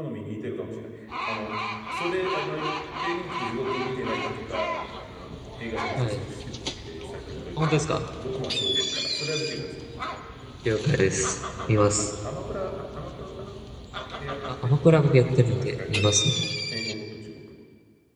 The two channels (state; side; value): identical; both; correlation 1.00